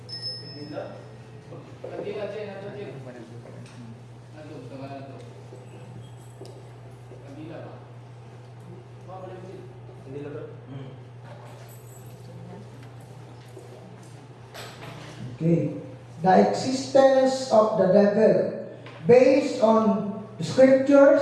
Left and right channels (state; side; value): identical; both; correlation 1.00